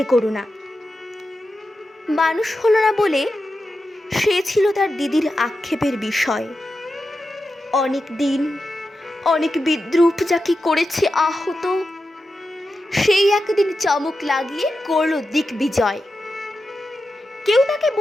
করো না। মানুষ হলো না বলে সে ছিল তার দিদির আক্ষেপের বিষয়। অনেক দিন অনেক বিদ্রূপ যাকে করেছে আহত, সেই একদিন চমক লাগিয়ে করল দিগ্বিজয়। কেউ তাকে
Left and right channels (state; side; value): normal; both; correlation 0.90